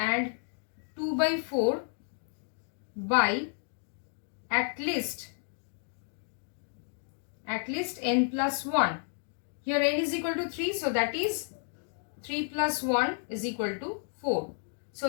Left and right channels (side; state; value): right; silent; 57 dB below the other